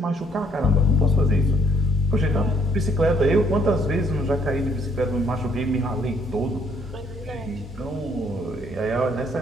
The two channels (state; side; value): normal; both; correlation 0.66